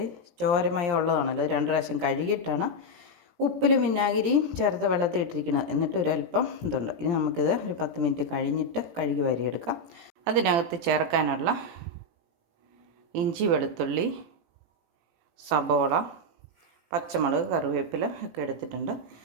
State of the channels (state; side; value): late; left; 18 ms